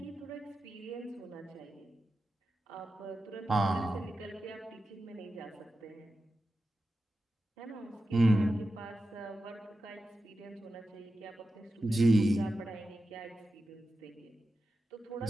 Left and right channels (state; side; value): normal; both; correlation 0.92